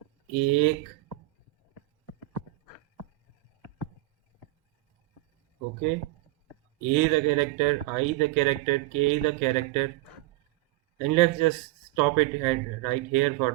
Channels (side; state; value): left; quieter; 18.6 dB